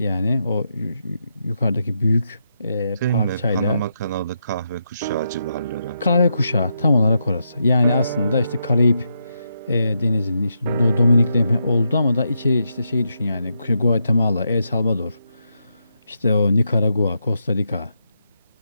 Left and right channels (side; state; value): both; inverted; correlation -0.83